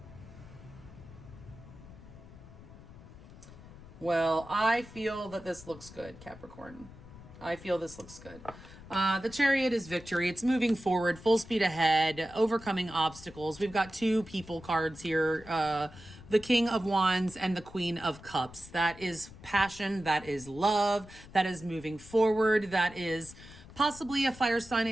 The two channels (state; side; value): noise; left; rumble, 18 dB below the sound